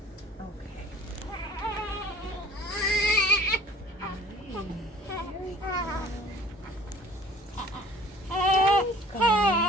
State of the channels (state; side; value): normal; both; correlation 0.50